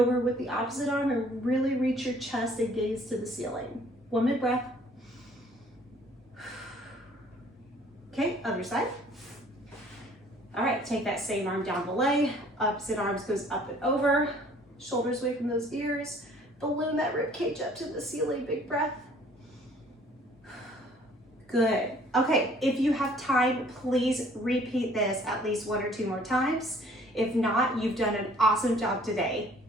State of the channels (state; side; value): normal; both; correlation 0.56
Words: with the opposite arm, and really reach your chest and gaze to the ceiling. 1 minute breath. Okay, other side. All right, take that same arm down the leg, opposite arms goes up and over, shoulders away from those ears, balloon that rib cage up to the ceiling, big breath. Good. Okay, if you have time, please repeat this at least 1 or 2 more times. If not, you've done an awesome job today.